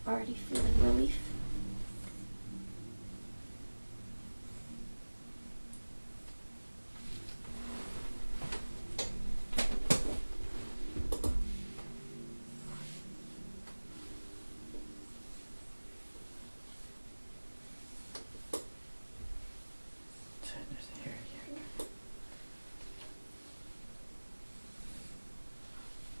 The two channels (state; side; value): inverted; both; correlation -1.00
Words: already feeling relief.